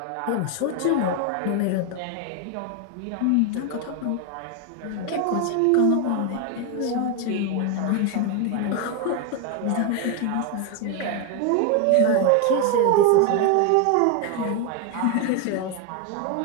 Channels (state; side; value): different; both; correlation 0.01